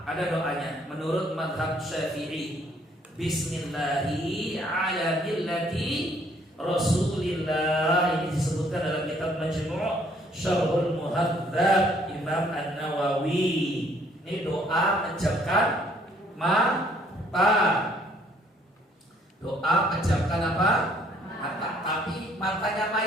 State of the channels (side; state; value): both; normal; correlation 0.63